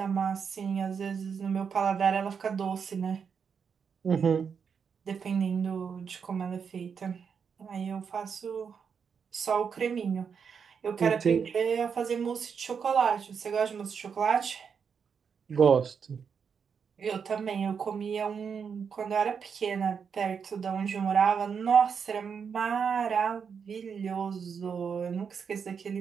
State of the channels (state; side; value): quieter; left; 6.5 dB